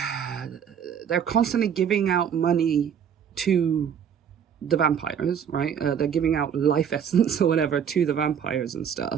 constantly giving out money to the vampires, right? They're giving out life essence or whatever to the vampires and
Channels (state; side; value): quieter; left; 8.1 dB